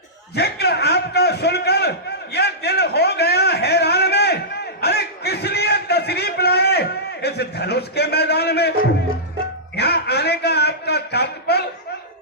जिक्र आपका सुनकर यह दिल हो गया हैरान में। अरे किस लिए तशरीफ लाए इस धनुष के मैदान में? यहाँ आने का आपका तात्पर्य,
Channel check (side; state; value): both; normal; correlation -0.16